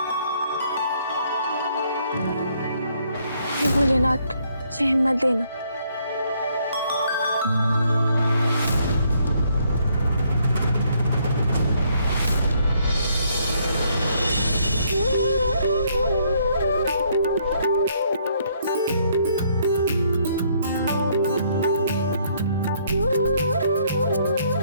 हे भोलेनाथ, मुझे हिम्मत देना।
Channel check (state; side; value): inverted; both; correlation -0.69